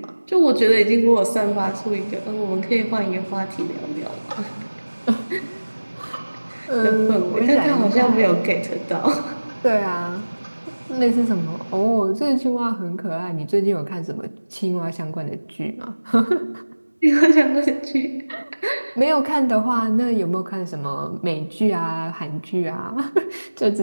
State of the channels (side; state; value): both; inverted; correlation -1.00